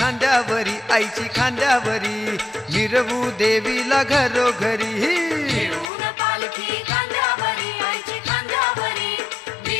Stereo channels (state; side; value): drops out; right; at 5.9 s